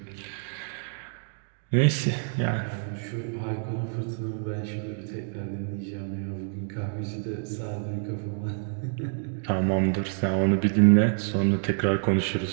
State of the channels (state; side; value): silent; left; 60 dB below the other